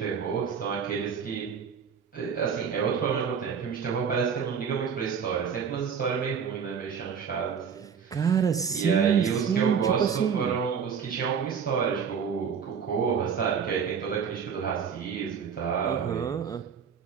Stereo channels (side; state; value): left; quieter; 6.8 dB